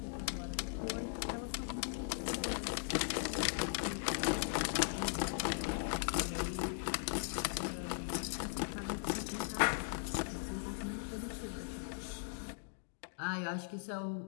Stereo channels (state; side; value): silent; right; digital silence